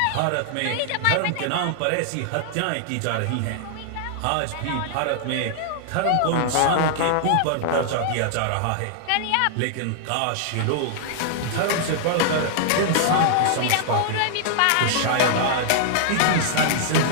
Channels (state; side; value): different; both; correlation -0.01